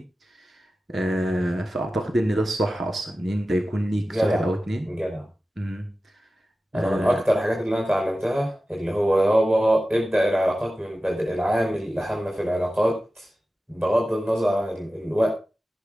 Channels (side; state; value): both; normal; correlation 0.94